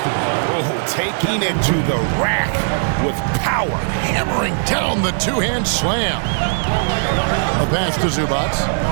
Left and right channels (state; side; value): silent; left; digital silence